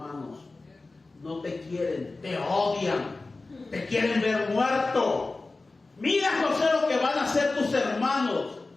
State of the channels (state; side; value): quieter; right; 3.4 dB